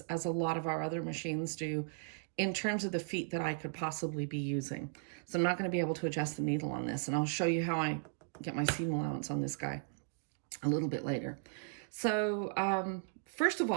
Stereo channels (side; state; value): left; silent; digital silence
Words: as a lot of our other machines do in terms of the feet that I could possibly be using. So I'm not going to be able to adjust the needle on this, and I'll show you how I get my seam allowance on this guy a little bit later. So first of